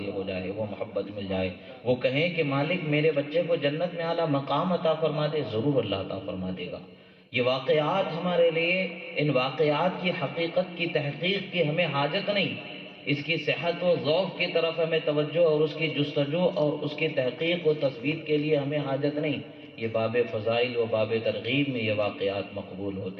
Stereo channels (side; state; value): both; identical; correlation 1.00